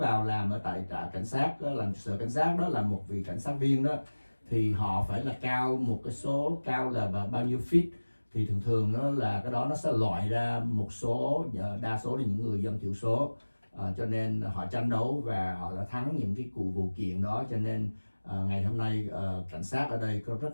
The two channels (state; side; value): inverted; both; correlation -1.00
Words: làm ở tại trại cảnh sát đó, làm sở cảnh sát đó, là một vị cảnh sát viên đó, thì họ phải là cao một cái số cao là bao nhiêu feet, thì thường thường đó là cái đó nó sẽ loại ra một số, đa số là những người dân thiểu số. Cho nên họ tranh đấu và họ đã thắng những cái vụ kiện đó, cho nên ngày hôm nay cảnh sát ở đây có